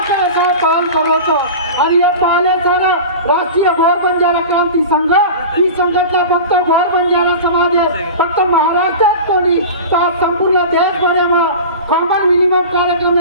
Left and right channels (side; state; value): both; inverted; correlation -0.32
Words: करायचा काम करतो आणि हे पाहिलेचा राष्ट्रीय गौर बंजारा क्रांती संघ ही संघटना फक्त गौर बंजारा समाज फक्त महाराष्ट्रात कोणी तर संपूर्ण देशभरात कॉमन मिनिमम कार्यक्रम